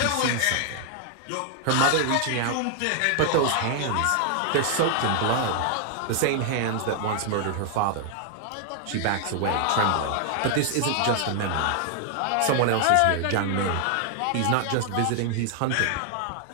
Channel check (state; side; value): different; both; correlation 0.00